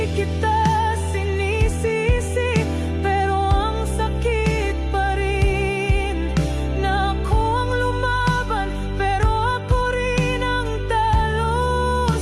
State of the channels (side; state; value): both; identical; correlation 1.00